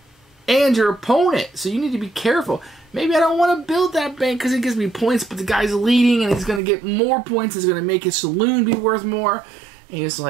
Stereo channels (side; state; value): left; drops out; at 6.6 s